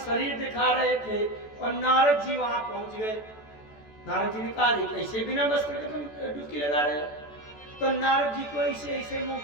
दिखा रहे थे। और नारद जी वहां पहुंच गए। नारद जी ने कहा कैसे बिना वस्त्र के तुम डुबकी लगा रहे हो? तो नारद जी को ऐसे ऐसे मुंह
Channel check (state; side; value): late; right; 14 ms